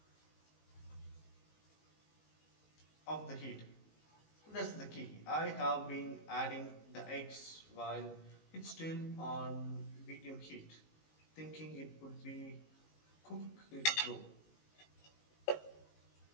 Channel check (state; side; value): late; right; 19 ms